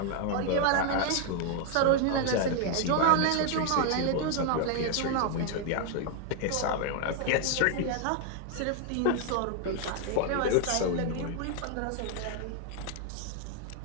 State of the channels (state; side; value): different; both; correlation 0.00